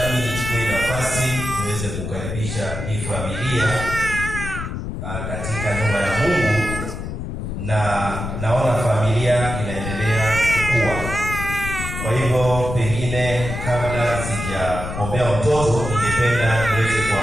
nichukue nafasi niweze kukaribisha hii familia katika nyumba ya Mungu, na naona familia inaendelea kukua. Kwa hivyo pengine kabla sijaombea mtoto, ningependa niweze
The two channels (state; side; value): noise; left; rumble, 6 dB below the sound